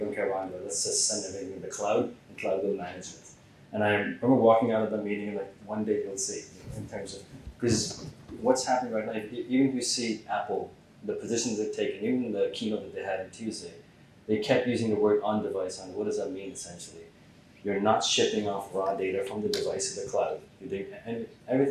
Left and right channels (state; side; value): identical; both; correlation 1.00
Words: care about it, let's just send everything to the cloud, and cloud will manage it. And I remember walking out of the meeting and like, one day you'll see, in terms of, because what's happening right now, even if you see Apple, the positions they've taken, even the keynote that they had on Tuesday, they kept using the word on device. And what does that mean essentially? You're not shipping off raw data from the device to the cloud. You're doing